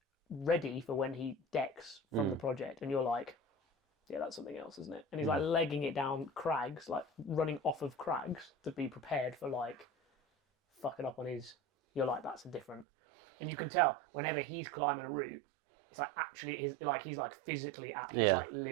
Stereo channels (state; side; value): drops out; left; at 12.9 s